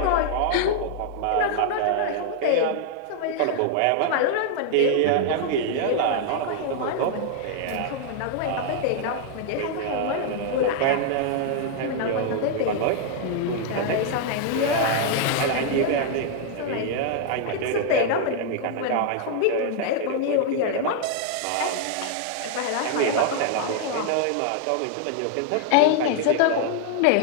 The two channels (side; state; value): both; different; correlation 0.00